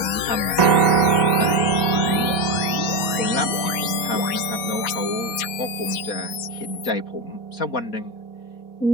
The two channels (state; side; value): late; right; 4.1 ms